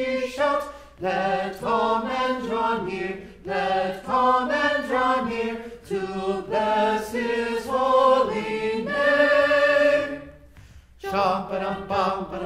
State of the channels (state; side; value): identical; both; correlation 1.00